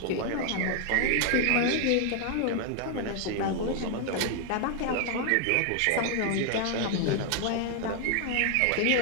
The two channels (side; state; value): both; different; correlation 0.00